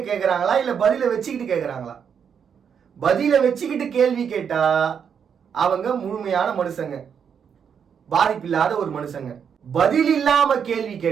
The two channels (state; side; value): quieter; left; 7.3 dB